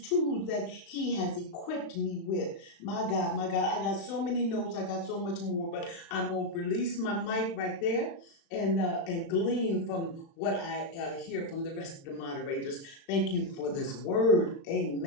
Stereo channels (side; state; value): right; late; 36 ms